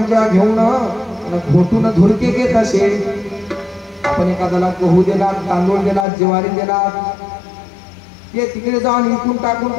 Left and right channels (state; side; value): drops out; right; at 6.1 s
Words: घेऊन घोटून धुरके घेत असे. आपण एखाद्याला गहू दिला, तांदूळ दिला, ज्वारी दिला, ते तिकडे जाऊन इकून टाकून